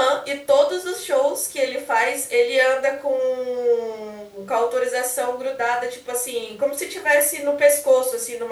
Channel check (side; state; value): both; identical; correlation 1.00